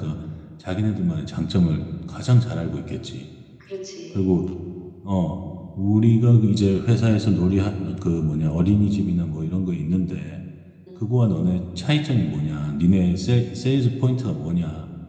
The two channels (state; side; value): identical; both; correlation 1.00